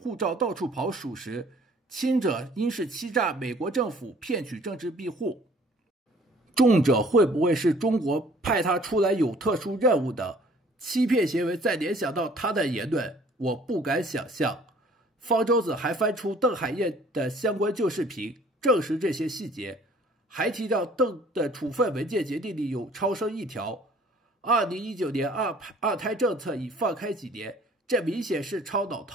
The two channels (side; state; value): both; normal; correlation 0.54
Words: 照到處跑屬實，輕者應是欺詐美國政府騙取政治庇護，重者會不會是中國派他出來有特殊任務的？欺騙行為再聯想到他的言論，我不敢想象。方舟子還翻出鄧海燕的相關舊視頻，證實這些細節，還提到鄧的處分文件決定裡有超生一條。2019年二胎政策已放開幾年，這明顯是超腦